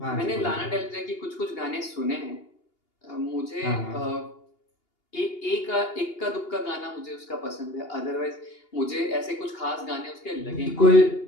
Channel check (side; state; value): right; late; 2.8 ms